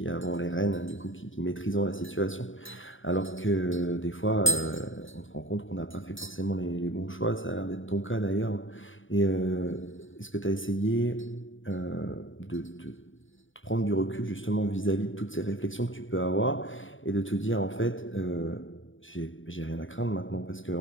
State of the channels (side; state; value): right; late; 0.57 ms